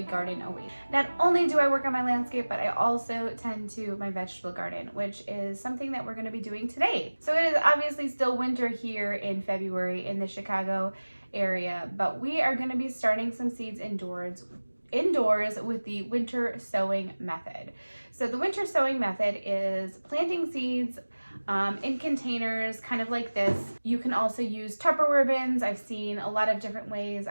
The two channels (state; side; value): inverted; both; correlation -1.00